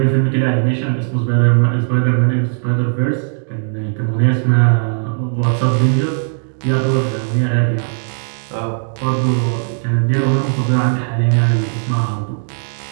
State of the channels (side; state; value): left; silent; digital silence